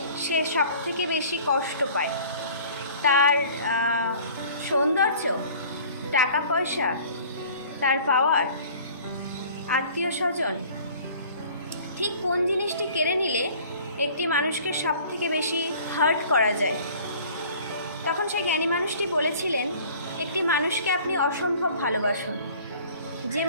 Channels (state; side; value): inverted; both; correlation -0.49